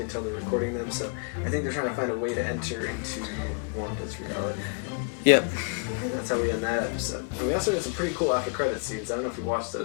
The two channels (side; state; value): right; quieter; 35.4 dB